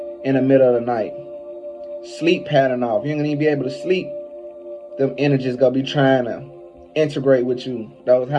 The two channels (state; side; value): identical; both; correlation 1.00